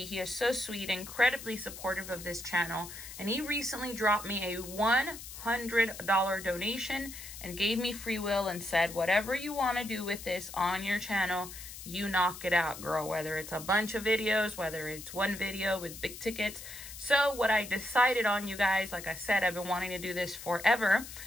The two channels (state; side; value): noise; left; hiss, 12 dB below the sound